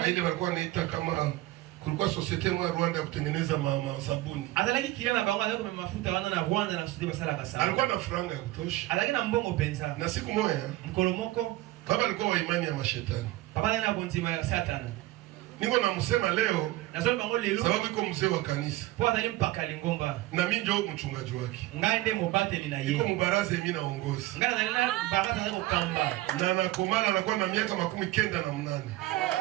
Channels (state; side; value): quieter; left; 17.2 dB